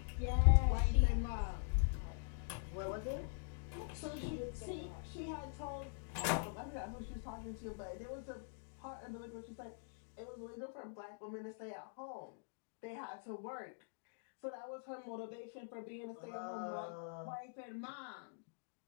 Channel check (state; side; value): silent; right; digital silence